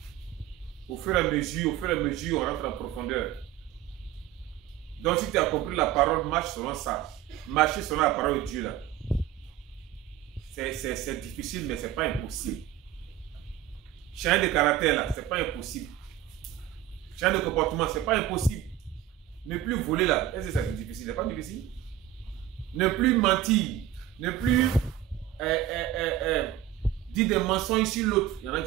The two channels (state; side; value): quieter; left; 11.4 dB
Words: Au fur et à mesure, on rentre en profondeur. Donc si tu as compris la parole, marche selon ça. Marcher selon la parole de Dieu là. C'est difficile, mais ce n'est pas impossible. Changer de caractère là, ce n'est pas impossible. Changer de comportement, ce n'est pas impossible. Ne plus voler là, est-ce que c'est difficile? Ce n'est pas difficile. Ne plus mentir, ne plus dire des mensonges sur l'autre. Il y en a qui